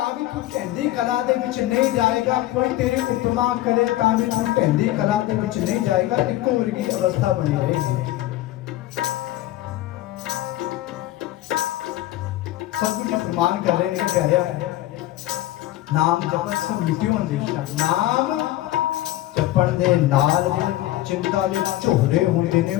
भी तू ढैंदी कला दे विच नहीं जाएगा, कोई तेरी उपमा करे तां भी तू ढैंदी कला दे विच नहीं जाएगा, इको वर्गी अवस्था बनी रहेगी। सतगुरु जी फरमान कर रहे हैं प्यारे, नाम जपत सब मिट्टियों अंदेशा, नाम जपण दे नाल चिंता दे झोरे होंदे ने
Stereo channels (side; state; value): right; quieter; 15.3 dB